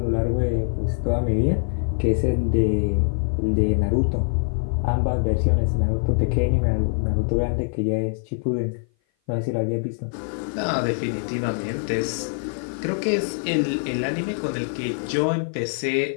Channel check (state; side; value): silent; right; 56 dB below the other